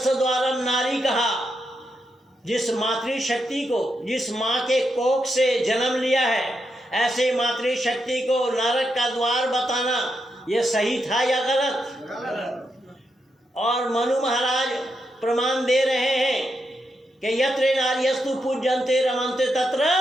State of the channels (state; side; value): normal; both; correlation 0.83